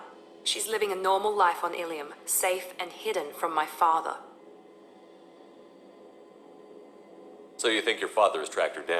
She's living a normal life on Ilium, safe and hidden from my father. So you think your father has tracked her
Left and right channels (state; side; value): identical; both; correlation 1.00